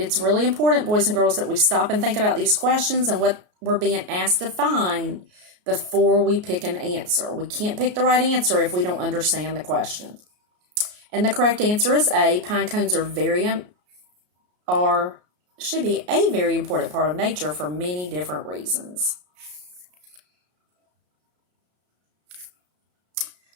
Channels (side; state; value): left; late; 33 ms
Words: really important, boys and girls, that we stop and think about these questions and what we're being asked to find before we pick an answer. We can't pick the right answer if we don't understand the question. And the correct answer is A. Pine cones should be a very important part of nature for many different reasons.